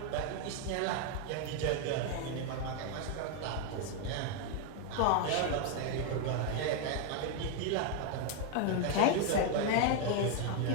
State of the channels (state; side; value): different; both; correlation 0.00